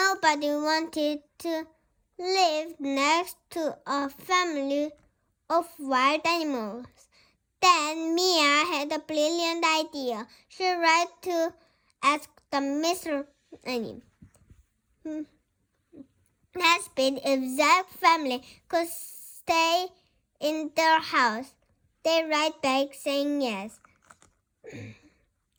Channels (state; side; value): identical; both; correlation 1.00